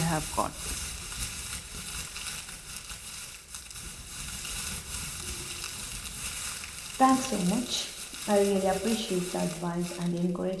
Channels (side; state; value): both; identical; correlation 1.00